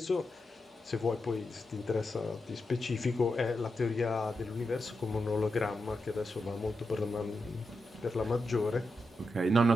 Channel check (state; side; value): normal; both; correlation 0.87